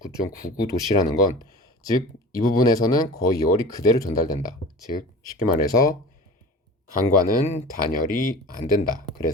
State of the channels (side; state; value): both; normal; correlation 0.37